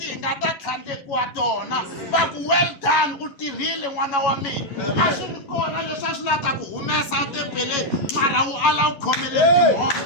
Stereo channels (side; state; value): right; late; 11 ms